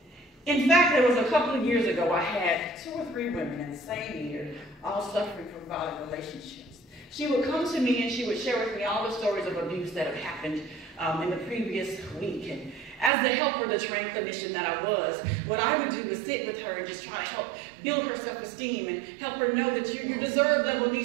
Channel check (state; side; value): drops out; left; at 13.1 s